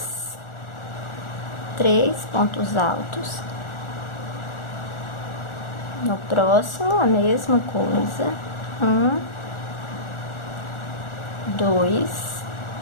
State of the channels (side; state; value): right; late; 1.4 ms